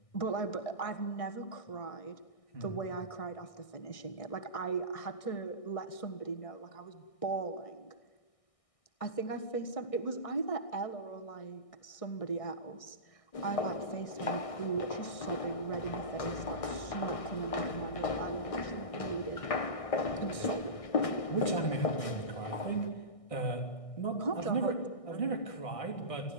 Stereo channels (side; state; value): right; late; 1.6 ms